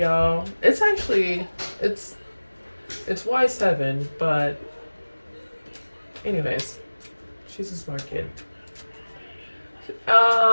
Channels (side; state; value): both; inverted; correlation -1.00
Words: It's actually, it's Y7, but anyways, she's a smart kid.